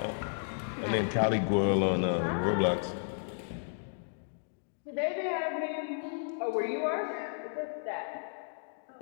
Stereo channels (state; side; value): silent; right; digital silence